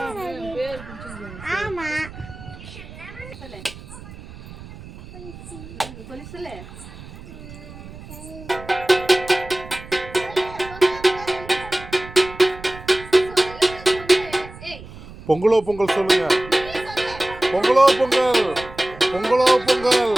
ஆமா சொல்லு. பொங்கலோ பொங்கல் சொல்லுங்க. பொங்கலோ பொங்கல், பொங்கலோ பொங்கல்,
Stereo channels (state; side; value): noise; right; rumble, 16 dB below the sound